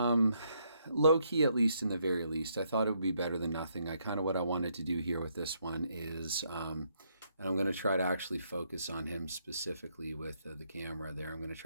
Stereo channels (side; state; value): both; inverted; correlation -0.74